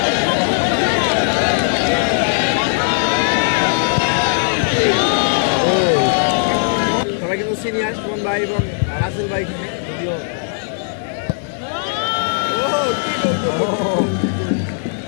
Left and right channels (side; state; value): right; silent; 60 dB below the other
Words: সবাই কিন্তু সিনিয়র সুমন ভাই এবং রাসেল ভাই ভিডিও